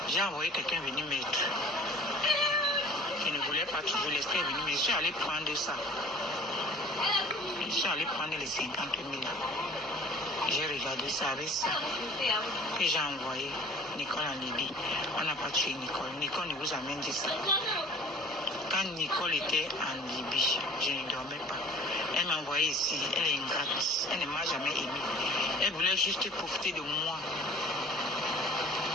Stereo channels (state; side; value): normal; both; correlation 0.47